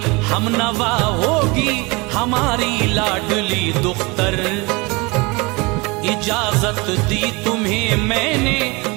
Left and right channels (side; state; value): left; quieter; 26.2 dB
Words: हमनवा होगी हमारी लाडली दुख्तर, इजाजत दी तुम्हें मैंने,